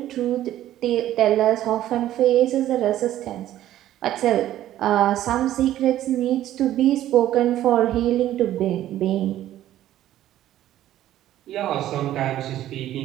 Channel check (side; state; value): left; quieter; 13.1 dB